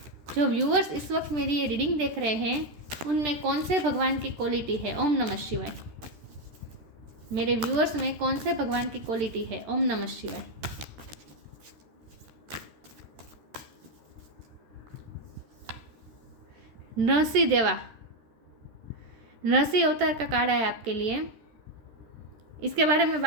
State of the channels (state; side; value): late; left; 13 ms